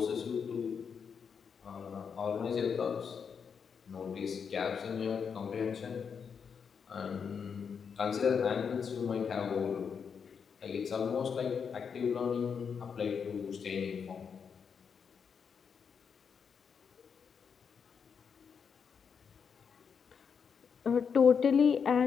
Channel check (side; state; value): right; quieter; 6.5 dB